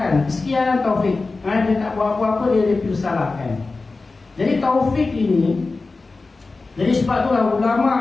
Sekian taufik. Dia tak buat apa-apa, dia dipersalahkan. Jadi taufik ini, jadi sebab itulah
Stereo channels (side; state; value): right; quieter; 3.7 dB